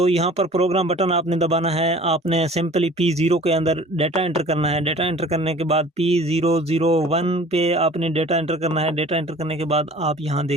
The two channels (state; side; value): normal; both; correlation 0.47